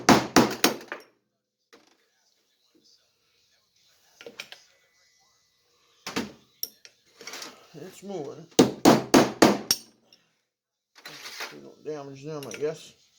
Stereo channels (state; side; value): identical; both; correlation 1.00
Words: It's moving. We don't damage them, I guess.